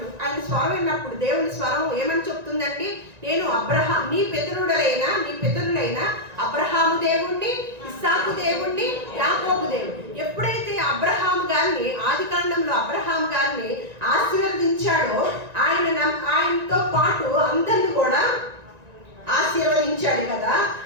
ఆయన స్వరం విన్నప్పుడు దేవుని స్వరం ఏమని చెప్తుందండి? నేను నీ పితరులైన అబ్రహాము దేవుణ్ణి, ఇస్సాకు దేవుణ్ణి, యాకోబు దేవుణ్ణి. ఎప్పుడైతే అబ్రహాము గారిని, ఆది కాండంలో అబ్రహాము గారిని ఆశీర్వదించాడో ఆయనతో పాటు అందరిని కూడా ఆశీర్వదించాడు కదా.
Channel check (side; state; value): left; late; 1.9 ms